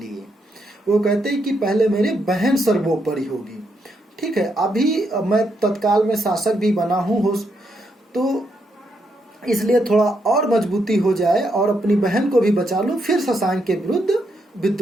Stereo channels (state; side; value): normal; both; correlation 0.79